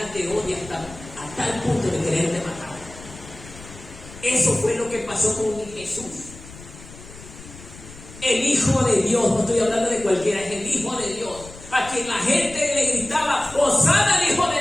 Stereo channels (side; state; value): left; noise; rumble, 17 dB below the sound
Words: te odia hasta el punto de quererte matar. Eso fue lo que pasó con Jesús. El Hijo de Dios, no estoy hablando de cualquiera, es el Hijo de Dios, a quien la gente le gritaba, Hosana al Hijo de